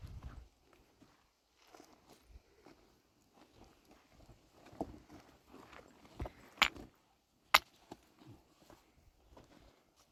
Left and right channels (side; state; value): both; identical; correlation 1.00